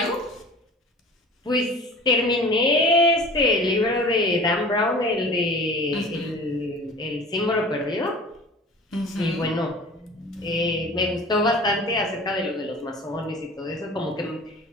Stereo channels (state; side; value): normal; both; correlation 0.42